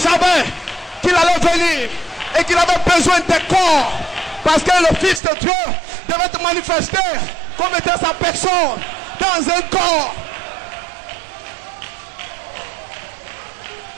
qu'il allait venir et qu'il avait besoin de corps. Parce que le Fils de Dieu devait te manifester comme étant sa personne dans un corps.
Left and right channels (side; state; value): left; drops out; at 5.2 s